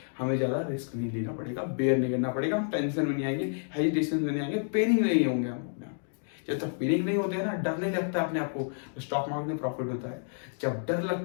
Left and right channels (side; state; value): right; silent; digital silence